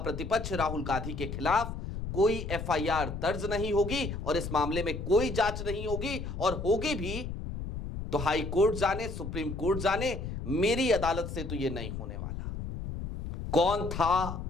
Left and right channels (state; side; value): noise; left; rumble, 6 dB below the sound